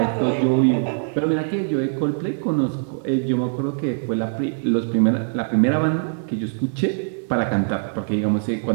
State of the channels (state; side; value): silent; left; digital silence